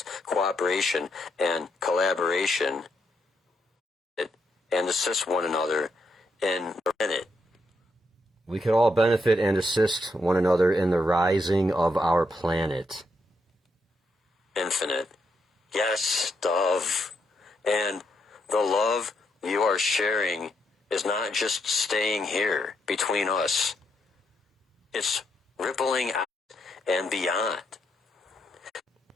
cooperation, and collaboration, and assist one another in it. We could all benefit and assist one another in the rising of our planet. Infinite. Yes, Dove. And the love you are sharing is not just staying here between us. It's rippling out and beyond.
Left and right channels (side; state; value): both; normal; correlation 0.78